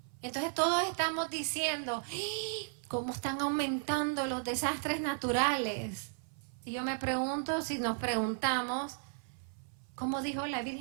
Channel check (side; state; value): left; silent; 55 dB below the other